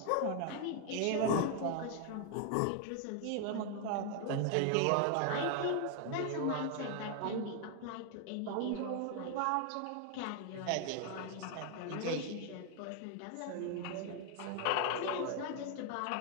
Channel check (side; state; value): both; different; correlation 0.00